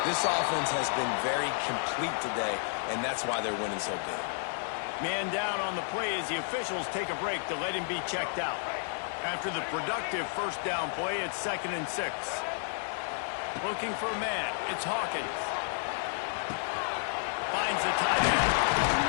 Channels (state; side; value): silent; right; digital silence